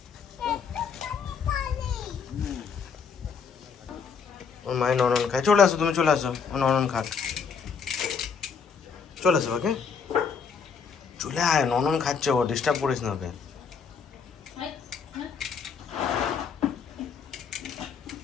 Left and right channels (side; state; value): right; quieter; 6.0 dB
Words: ওর মায়ের ননন খায়, চলে আসো, তুমি চলে আসো, ও ননন খাক, চলে আসো ওকে। চলে আয়, ননন খাচ্ছে, ও ডিস্টার্ব করিস না ওকে।